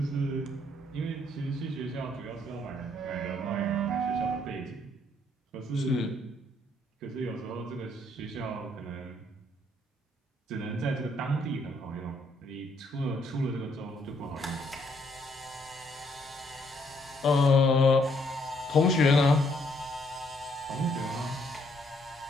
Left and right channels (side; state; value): both; normal; correlation 0.69